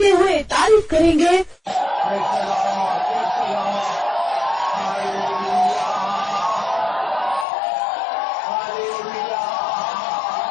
हुए तारीफ करेंगे।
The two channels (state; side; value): drops out; right; at 7.5 s